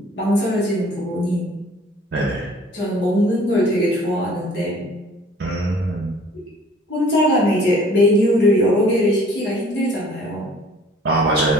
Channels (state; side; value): normal; both; correlation 0.53